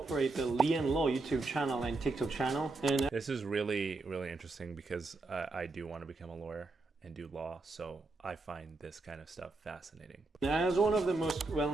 the lee&law YouTube channel and TikTok channel. And this is really, really interesting because I do want to become a lawyer and do law, so I find this kind of stuff fascinating. As one of the most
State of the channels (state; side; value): quieter; left; 3.4 dB